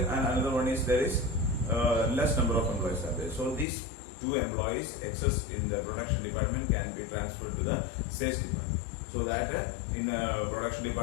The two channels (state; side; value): drops out; right; at 3.7 s